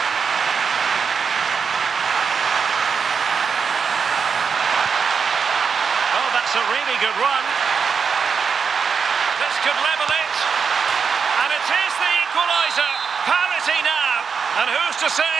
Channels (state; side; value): quieter; left; 6.0 dB